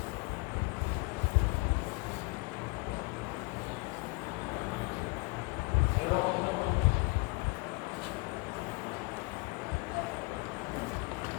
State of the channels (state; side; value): quieter; right; 26.3 dB